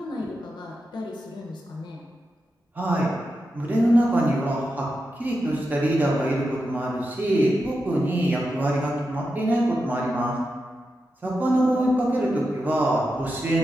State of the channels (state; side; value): normal; both; correlation 0.88